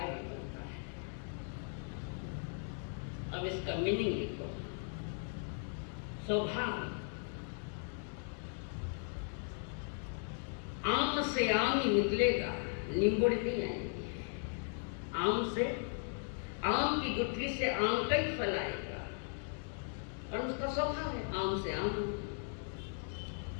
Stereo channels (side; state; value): right; silent; 53 dB below the other